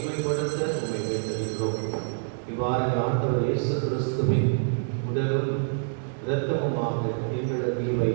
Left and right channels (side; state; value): left; silent; digital silence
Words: வேண்டியிருக்கிறோம். இவ்வாறு ஆண்டவர் இயேசு கிறிஸ்துவின் உடலும் இரத்தமுமாக எங்களுக்கு இவை